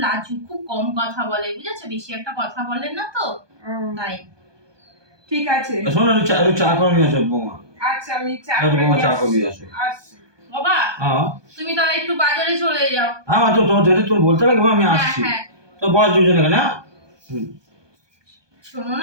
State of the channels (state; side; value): late; left; 1.2 ms